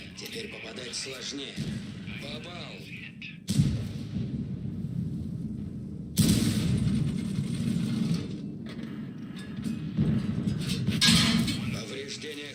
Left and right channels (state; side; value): identical; both; correlation 1.00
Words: Теперь попадать сложнее. Попал. Повреждение